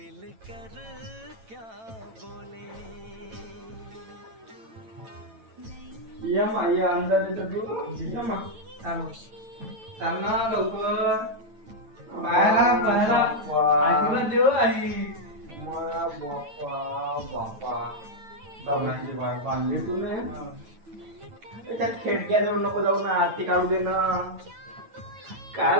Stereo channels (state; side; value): late; left; 9.0 ms